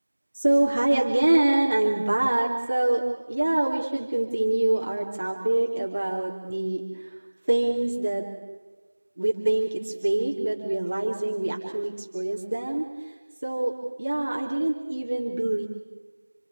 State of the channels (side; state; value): both; inverted; correlation -1.00